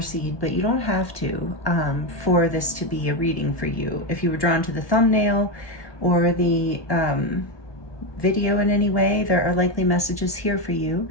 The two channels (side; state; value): right; late; 1.2 ms